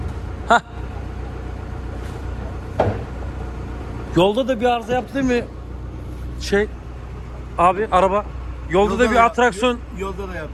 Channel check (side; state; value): both; identical; correlation 1.00